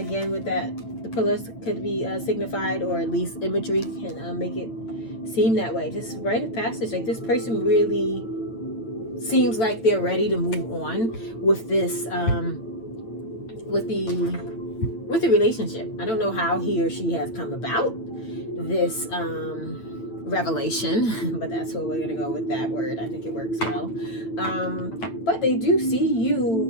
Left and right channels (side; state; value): right; late; 9.0 ms